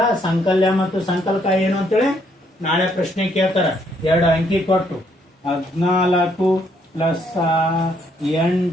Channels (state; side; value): normal; both; correlation 0.70